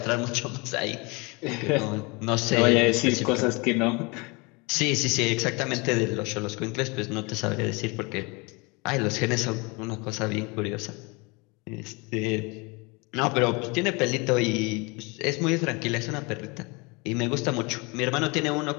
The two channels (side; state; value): right; quieter; 27.9 dB